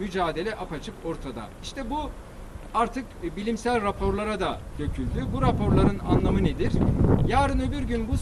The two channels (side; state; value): both; identical; correlation 1.00